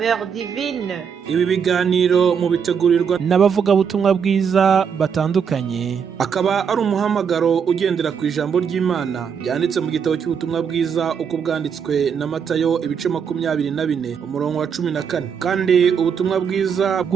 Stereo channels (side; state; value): left; quieter; 6.9 dB